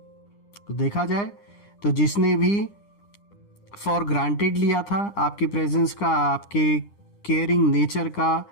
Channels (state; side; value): late; right; 9.9 ms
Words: तो देखा जाए तो जिसने भी फॉर ग्रांटेड लिया था आपकी प्रेजेंस का, आपके केयरिंग नेचर का,